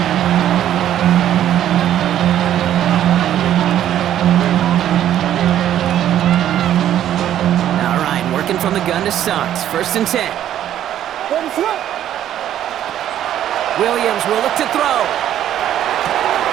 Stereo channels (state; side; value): quieter; left; 11.3 dB